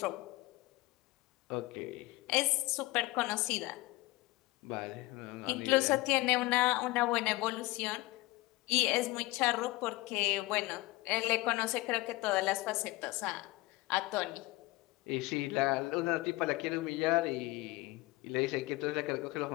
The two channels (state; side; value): quieter; right; 20.7 dB